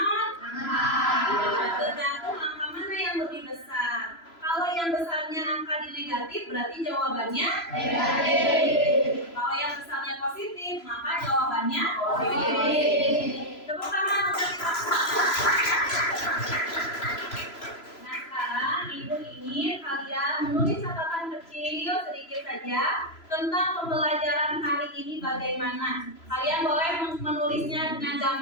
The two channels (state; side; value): late; right; 3.0 ms